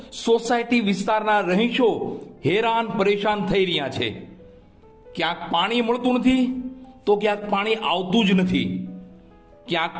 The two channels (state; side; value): identical; both; correlation 1.00